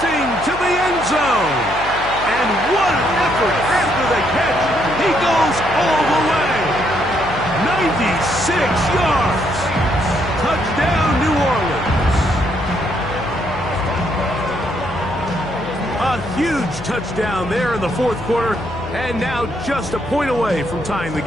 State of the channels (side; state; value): left; noise; hum, 13 dB below the sound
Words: to the end zone. And what an effort after the catch. He goes all the way. 96 yards. Touchdown, New Orleans. A huge touchdown there in the fourth quarter. And now just a point away from tying the